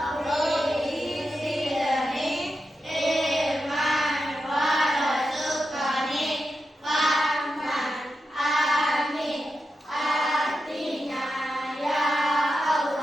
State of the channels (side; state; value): both; normal; correlation 0.88